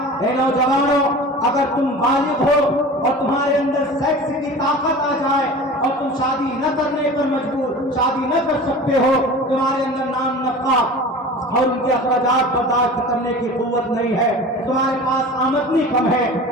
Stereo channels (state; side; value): normal; both; correlation 0.37